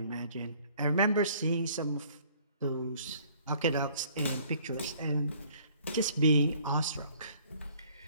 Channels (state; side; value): inverted; both; correlation -0.58